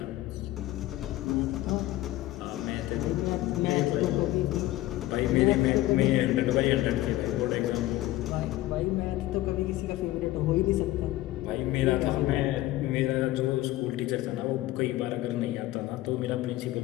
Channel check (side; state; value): right; quieter; 16.5 dB